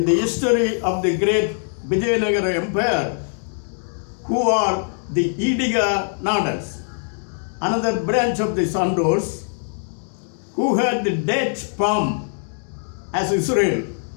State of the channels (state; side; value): silent; right; 64 dB below the other